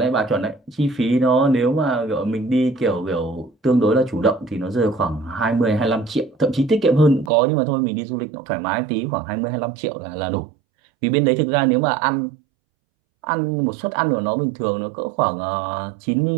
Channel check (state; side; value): drops out; left; at 7.3 s